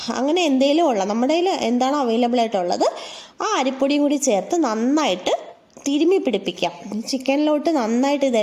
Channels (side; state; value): both; identical; correlation 1.00